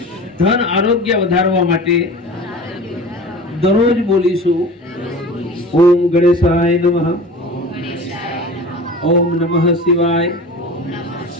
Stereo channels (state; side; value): normal; both; correlation 0.37